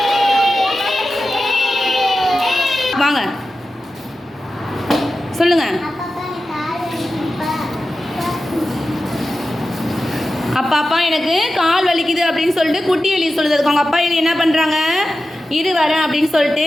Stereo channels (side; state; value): both; normal; correlation 0.93